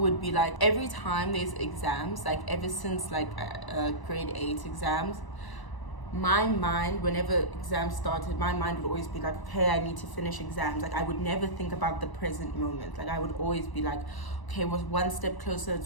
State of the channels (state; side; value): late; right; 1.0 ms